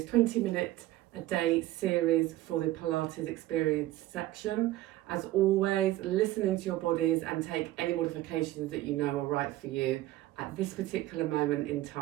20-minute a day series for the Pilates Experienced section. As always, listen into your bodies and take any modifications that you know are right for you at this particular moment in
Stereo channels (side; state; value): left; quieter; 15.9 dB